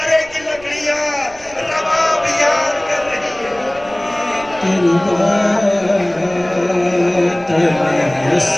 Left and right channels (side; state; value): right; noise; rumble, 22 dB below the sound